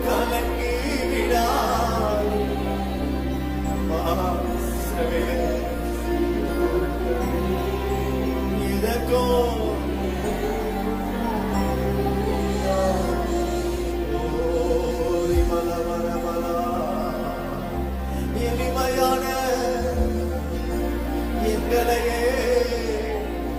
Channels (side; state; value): both; identical; correlation 1.00